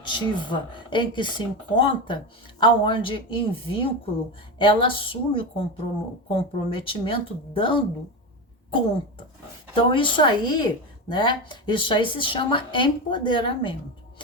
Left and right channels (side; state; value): both; normal; correlation 0.19